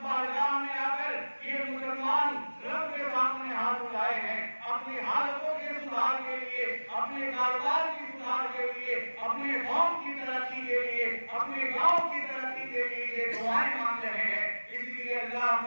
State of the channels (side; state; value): both; inverted; correlation -1.00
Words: بارگاہ میں آ کر یہ مسلمان رب کے سامنے ہاتھ اٹھائے ہیں اپنی حالتوں کے سدھار کے لیے، اپنے کاروبار کی سدھار کے لیے، اپنے قوم کی ترقی کے لیے، اپنے گاؤں کی ترقی کے لیے یہ دعائیں مانگ رہے ہیں۔ اس لیے اللہ